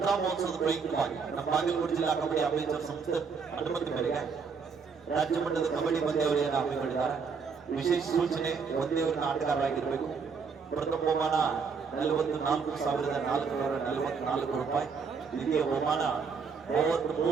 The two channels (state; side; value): quieter; left; 5.5 dB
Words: ಮಹೋತ್ಸವದ ಪ್ರಯುಕ್ತವಾಗಿ ನಮ್ಮ ಬಾಗಲಕೋಟೆ ಜಿಲ್ಲಾ ಕಬಡ್ಡಿ ಅಭಿವೃದ್ಧಿ ಸಂಸ್ಥೆ ಅನುಮತಿ ಮೇರೆಗೆ ರಾಜ್ಯ ಮಟ್ಟದ ಕಬಡ್ಡಿ ಪಂದ್ಯಾವಳಿಯನ್ನು ಹಮ್ಮಿಕೊಂಡಿದ್ದಾರೆ. ವಿಶೇಷ ಸೂಚನೆ ಒಂದೇ ಊರಿನ ಆಟಗಾರರಾಗಿರಬೇಕು. ಪ್ರಥಮ ಬಹುಮಾನ 44,444 ರೂಪಾಯಿ. ದ್ವಿತೀಯ ಬಹುಮಾನ